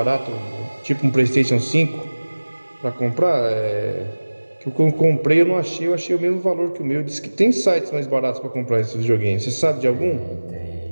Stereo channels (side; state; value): both; inverted; correlation -1.00